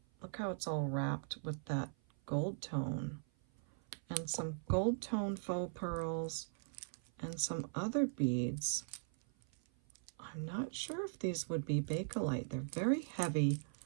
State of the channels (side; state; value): left; silent; 51 dB below the other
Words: look how it's all wrapped with that gold tone. And some gold tone faux pearls and some other beads. I'm not sure if these would be Bakelite. They're very heavy